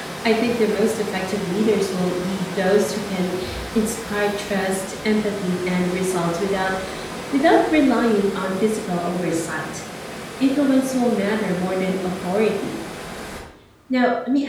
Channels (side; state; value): both; identical; correlation 1.00